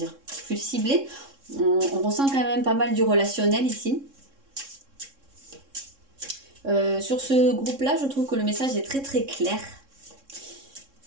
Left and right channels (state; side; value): late; left; 3.6 ms